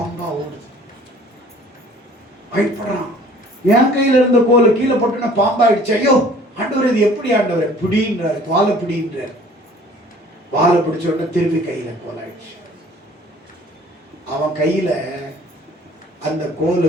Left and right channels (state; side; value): normal; both; correlation 0.52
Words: ஓடுது. பயப்படுறான். என் கையில இருந்த கோல் கீழே போட்டுன்னா பாம்பாயிடுச்சு. ஐயோ ஆண்டவர், இது எப்படி ஆண்டவர்? பிடின்றார், வாழை பிடின்றார். வாழை பிடிச்ச உடனே திருப்பி கையில கோல் ஆயிடுச்சு. அவன் கையில அந்த கோல்